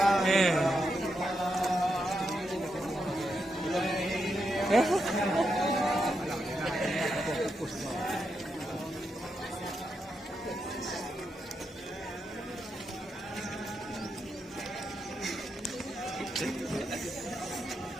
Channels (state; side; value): normal; both; correlation 0.84